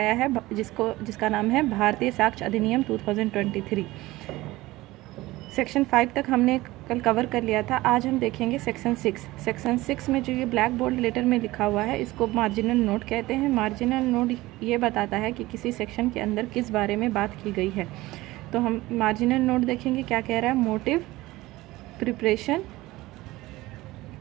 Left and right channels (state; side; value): quieter; left; 18.7 dB